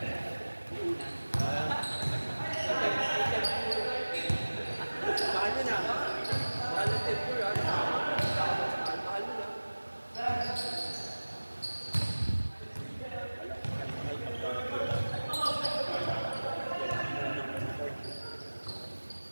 mahal nyo na. Mahal ng tempo yan. Mahal nyo na.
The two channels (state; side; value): inverted; both; correlation -1.00